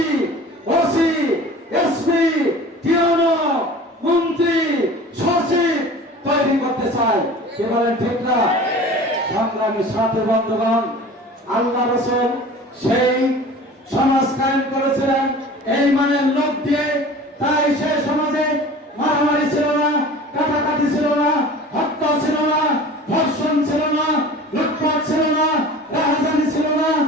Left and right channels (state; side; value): normal; both; correlation 0.41